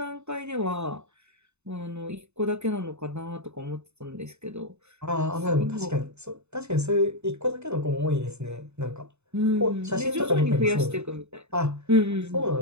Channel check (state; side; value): late; left; 0.81 ms